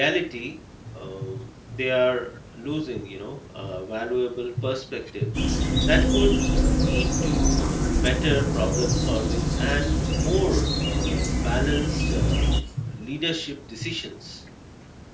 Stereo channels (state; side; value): identical; both; correlation 1.00